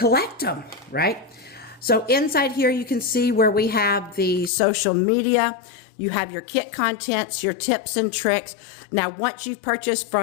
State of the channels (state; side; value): drops out; right; at 4.5 s